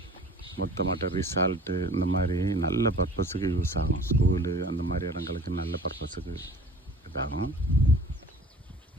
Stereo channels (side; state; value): both; normal; correlation 0.45